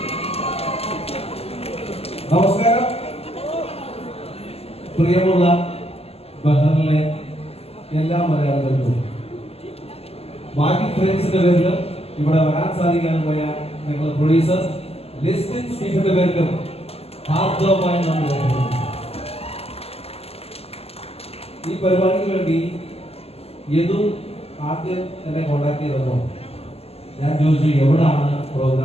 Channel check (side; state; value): right; late; 0.29 ms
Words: നമസ്കാരം. പ്രിയമുള്ള ബഹറിലെ എല്ലാ മലയാളികൾക്കും ബാക്കി ഫ്രണ്ട്സിന്റെ പേരിലും ഇവിടെ വരാൻ സാധിക്കാനും പോയ ഞങ്ങളുടെ പ്രൊഡ്യൂസർ ലിസ്റ്റിൻ സ്റ്റീഫന്റെ പേരിലും ഹാർദവമായി നന്ദി രേഖപ്പെടുത്തുന്നു. ഈ പരിപാടിക്ക് വേണ്ടി യദു ആദ്യം എന്നെ കോണ്ടാക്ട് ചെയ്തപ്പോൾ ഞാൻ ചോദിച്ചു എവിടാണ്